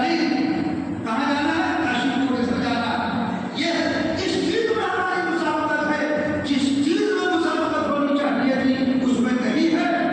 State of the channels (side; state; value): both; identical; correlation 1.00